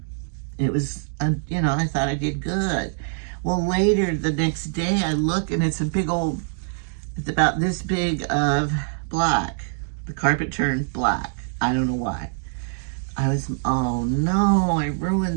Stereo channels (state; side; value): silent; left; digital silence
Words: it was, you know, I thought I did good. Well, later the next day I look and it's a big old, it's about this big of black. The carpet turned black. I don't know why. I was, oh no, I